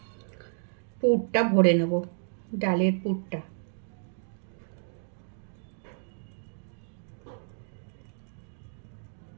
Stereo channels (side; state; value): left; silent; digital silence